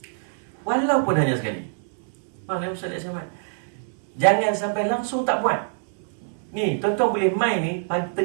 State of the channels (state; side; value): silent; left; 62 dB below the other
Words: Walaupun hanya sekali. Faham ya Ustaz Ahmad? Jangan sampai langsung tak buat. Ni, tuan-tuan boleh main ni pagi